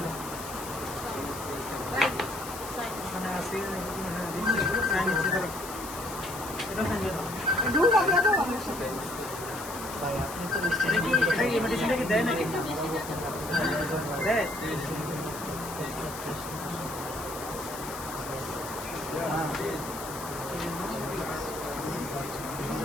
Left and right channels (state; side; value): noise; left; hiss, 11 dB below the sound